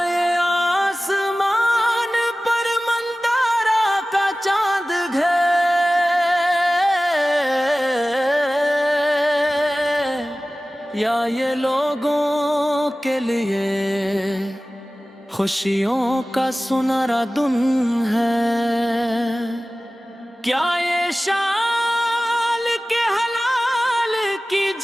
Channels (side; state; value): both; normal; correlation 0.97